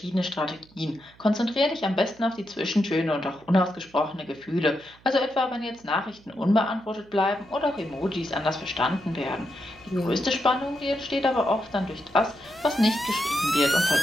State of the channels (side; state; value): right; noise; hum, 27 dB below the sound